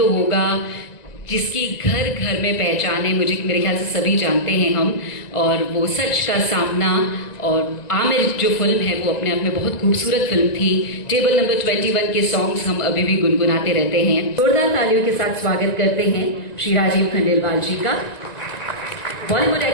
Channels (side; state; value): right; late; 1.9 ms